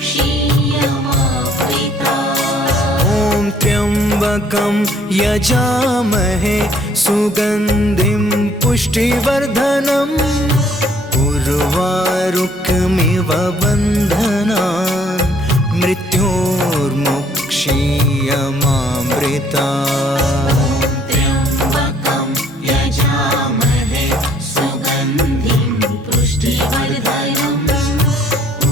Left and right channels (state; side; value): normal; both; correlation 0.62